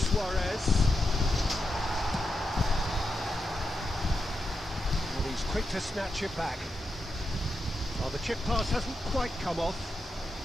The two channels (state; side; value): normal; both; correlation 0.87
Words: Suarez. And he's quick to snatch it back. Oh, the chip pass hasn't quite come off.